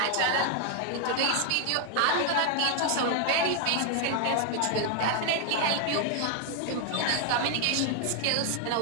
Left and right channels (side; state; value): both; different; correlation 0.00